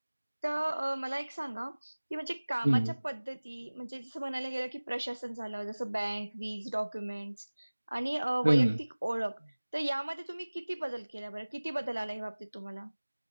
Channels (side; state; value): both; inverted; correlation -1.00